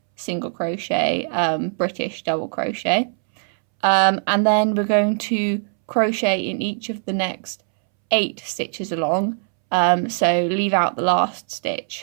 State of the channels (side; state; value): left; silent; 64 dB below the other